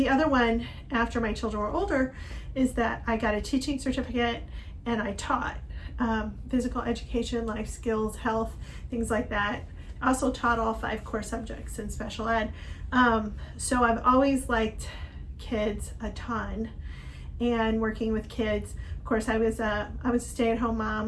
other one after my children were older is that I got a teaching certificate and I taught physical education, life skills, health, things like that. I also taught all 5 core subjects in special ed. So I've always liked kids a ton and working with kids. Of course, I was a stay-at-home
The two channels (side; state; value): both; identical; correlation 1.00